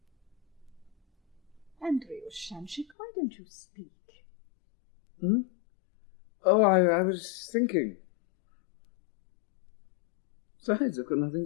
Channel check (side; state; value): right; drops out; at 3.0 s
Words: Andrewsha, why don't you speak? Oh, I was thinking. Besides, I've got nothing